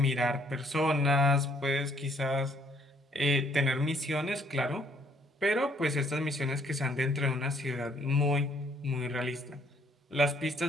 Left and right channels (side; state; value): both; normal; correlation 0.65